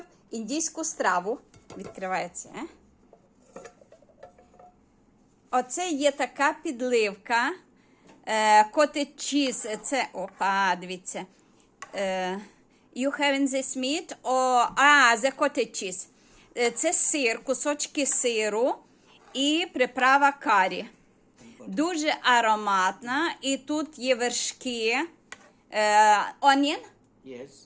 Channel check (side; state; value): both; identical; correlation 1.00